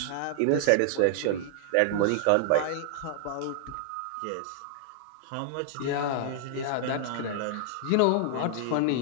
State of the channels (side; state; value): both; different; correlation -0.01